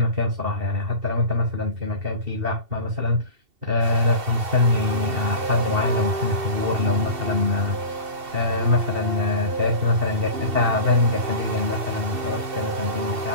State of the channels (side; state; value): left; late; 2.7 ms